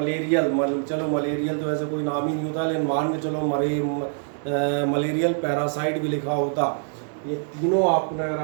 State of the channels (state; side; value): silent; left; digital silence